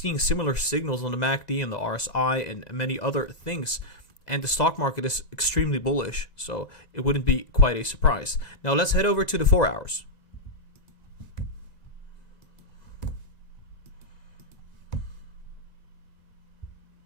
similar signals on the MACD and the RSI and many other things. And the stock market is extremely bullish, so it wouldn't be quite a surprise. Now let's head over to the 4 hours.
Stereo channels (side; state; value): right; late; 1.9 ms